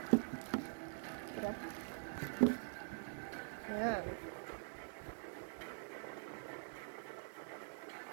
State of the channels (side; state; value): left; silent; digital silence